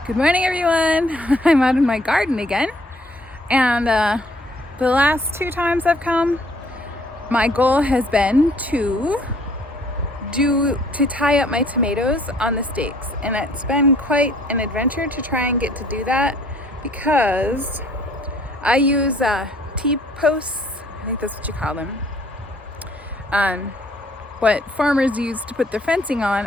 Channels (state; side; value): normal; both; correlation 0.60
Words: Good morning, everyone. I'm out in my garden again, and the last 2 times I've come, my goal has been to tie up my tomatoes on the stakes, and it's been quite an adventure to try and get to do that because I use T-posts. I think that's what you call them. What farmers use to put their fencing on,